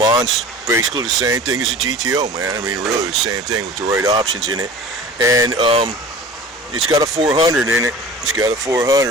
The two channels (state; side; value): normal; both; correlation 0.40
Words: Basically the same thing as a GTO, man. I mean, really the same thing with the right options in it. And it's got a 400 in it. It's got a